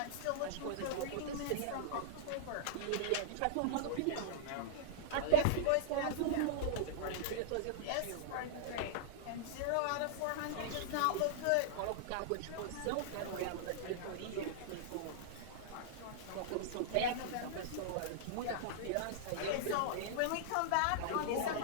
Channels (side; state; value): both; different; correlation -0.01